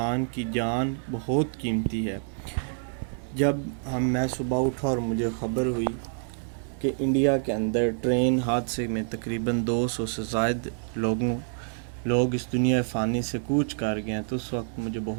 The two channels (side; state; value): left; silent; digital silence